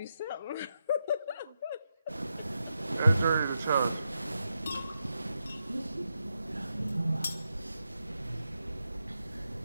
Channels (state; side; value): inverted; both; correlation -0.86